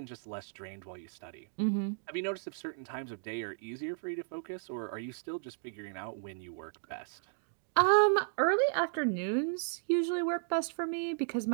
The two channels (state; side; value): silent; left; digital silence